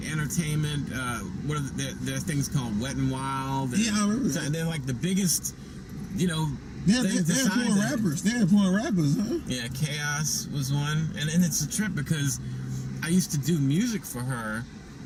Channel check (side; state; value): both; identical; correlation 1.00